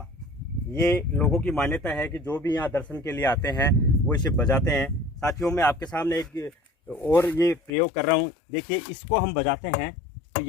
ये लोगों की मान्यता है कि जो भी यहाँ दर्शन के लिए आते हैं वो इसे बजाते हैं। साथियों मैं आपके सामने एक और ये प्रयोग कर रहा हूँ। देखिए, इसको हम बजाते हैं तो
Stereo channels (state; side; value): drops out; right; at 7.7 s